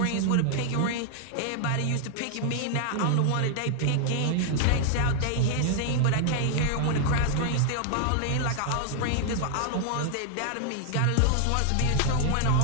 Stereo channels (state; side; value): different; both; correlation 0.00